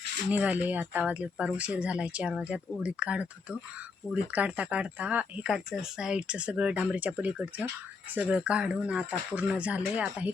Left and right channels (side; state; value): right; quieter; 4.6 dB